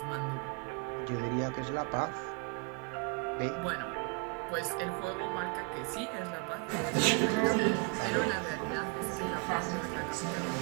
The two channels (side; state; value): left; quieter; 34.2 dB